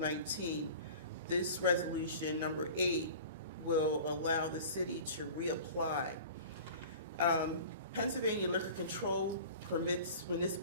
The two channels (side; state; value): both; inverted; correlation -0.40